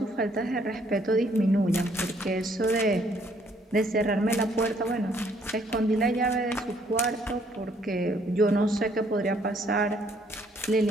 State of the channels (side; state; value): both; normal; correlation 0.66